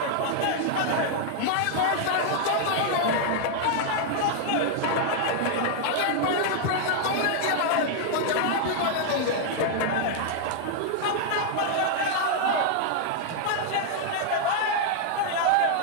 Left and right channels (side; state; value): both; different; correlation 0.00